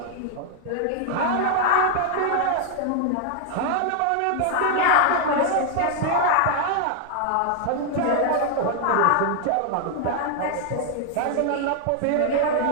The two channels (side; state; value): both; different; correlation 0.00